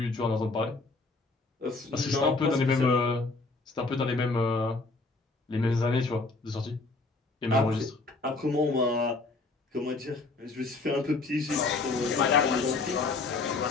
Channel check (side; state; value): right; quieter; 3.6 dB